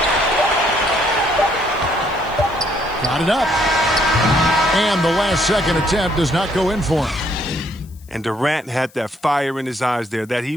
Got it up. And the last second attempt does not go in for him. And Durant had that fire in his eyes there that he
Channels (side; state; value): left; noise; hiss, 27 dB below the sound